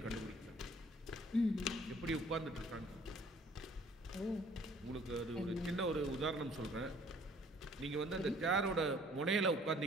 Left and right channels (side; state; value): both; normal; correlation 0.56